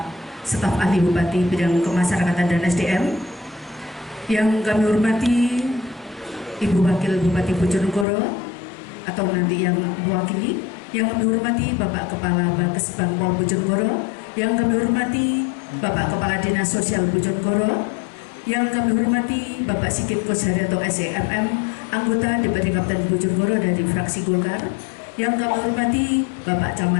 Staf Ahli Bupati Bidang Kemasyarakatan dan SDM. Yang kami hormati Ibu Wakil Bupati Bojonegoro atau nanti yang mewakili. Yang kami hormati Bapak Kepala Bakes Bangpol Bojonegoro. Yang kami hormati Bapak Kepala Dinas Sosial Bojonegoro. Yang kami hormati Bapak Sigit Kosharyanto SEMM, anggota DPRD Kabupaten Bojonegoro dari fraksi Golkar. Yang kami hormati Bapak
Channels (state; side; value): drops out; right; at 8.1 s